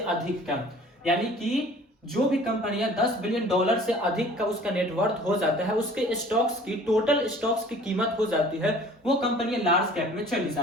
का। यानी कि जो भी कंपनियां 10 बिलियन डॉलर से अधिक का उसका नेटवर्थ हो जाता है, उसके स्टॉक्स की, टोटल स्टॉक्स की कीमत हो जाती है, वो कंपनियां लार्ज कैप में चली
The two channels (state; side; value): normal; both; correlation 0.49